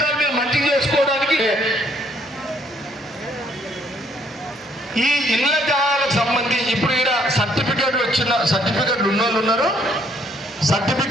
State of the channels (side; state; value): both; normal; correlation 0.66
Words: మీరు మంచిగా చేసుకోవడానికి ఈ ఇళ్ల జాగాలకు సంబంధించి ఇప్పుడు ఇక్కడ సర్టిఫికెట్ వచ్చిన సర్టిఫికెట్లు ఉన్నోళ్ళు ఉన్నారు,